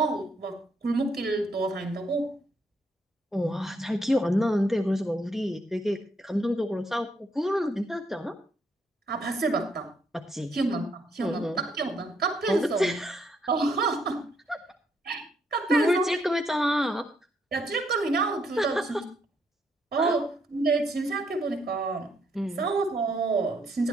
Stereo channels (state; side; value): normal; both; correlation 0.73